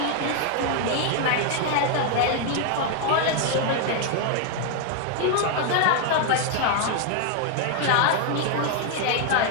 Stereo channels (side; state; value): both; different; correlation 0.01